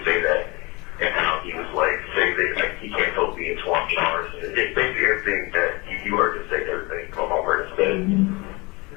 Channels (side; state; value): right; quieter; 25.8 dB